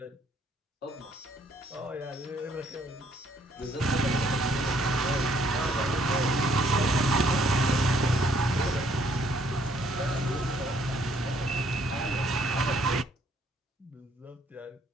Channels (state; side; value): normal; both; correlation 0.66